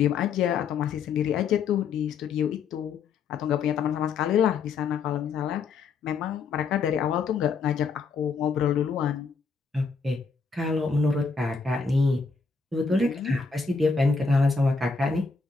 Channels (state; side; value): quieter; right; 5.1 dB